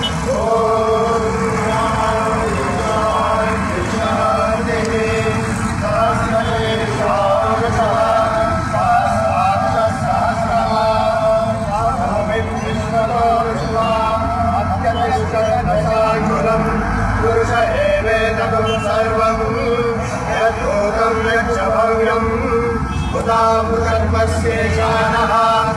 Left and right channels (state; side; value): identical; both; correlation 1.00